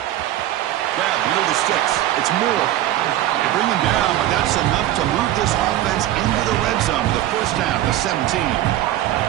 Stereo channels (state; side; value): quieter; left; 13.6 dB